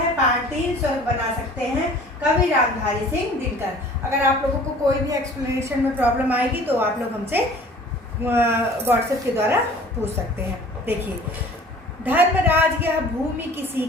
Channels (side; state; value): both; normal; correlation 0.48